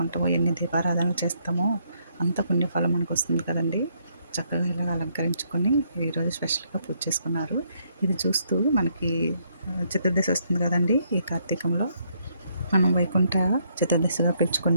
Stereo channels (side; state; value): both; inverted; correlation -0.72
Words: ఎన్ని దీపారాధనలు చేస్తామో అంత పుణ్యఫలం మనకు వస్తుంది కదండి. చక్కగా ఇలాగ అలంకరించుకొని ఈరోజు స్పెషల్గా పూజ చేసుకున్నారు. ఇది చూస్తూ మనకి చతుర్దశి వస్తుంది కదండి. ఈ కార్తీకంలో మనం వైకుంఠ చతుర్దశిగా